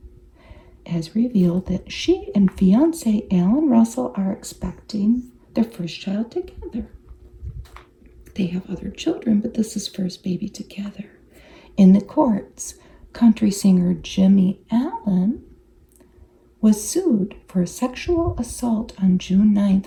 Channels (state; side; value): identical; both; correlation 1.00